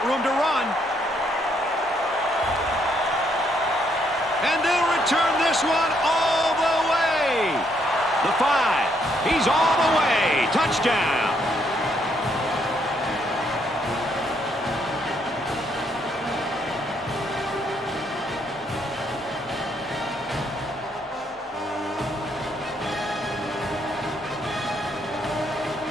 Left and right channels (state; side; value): normal; both; correlation 0.72